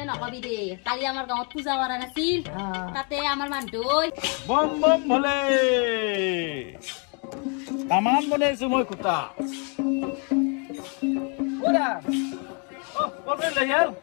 নকবি দে কালি আমাৰ গাঁৱত পূজা কৰা নাছিল তাতে আমাৰ মানুহ বম বম ভলে তামান বনাইছো মই কুটা ওৰা কবে লয়াল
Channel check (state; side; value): quieter; right; 37.6 dB